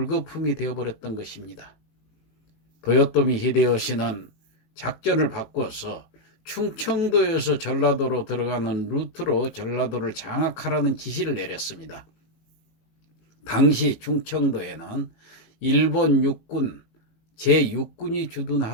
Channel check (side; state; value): right; late; 18 ms